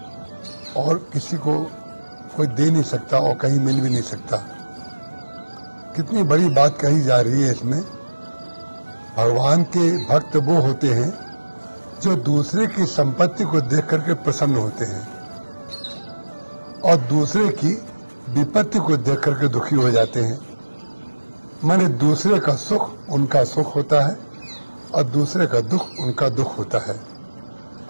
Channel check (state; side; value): inverted; both; correlation -1.00